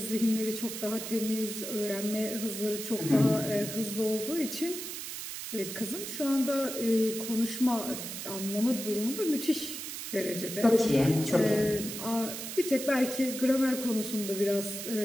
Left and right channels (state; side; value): noise; right; hiss, 7 dB below the sound